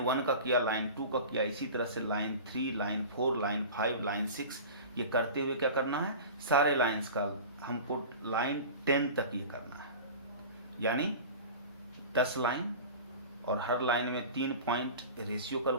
1 का किया, लाइन 2 का किया, इसी तरह से लाइन 3, लाइन 4, लाइन 5, लाइन 6 ये करते हुए क्या करना है सारे लाइन्स का हमको लाइन 10 तक ये करना है, यानी 10 लाइन और हर लाइन में 3 पॉइंट रेशियो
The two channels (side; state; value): both; inverted; correlation -0.35